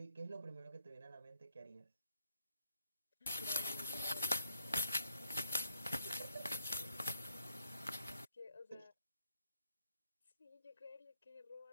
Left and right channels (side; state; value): both; inverted; correlation -0.75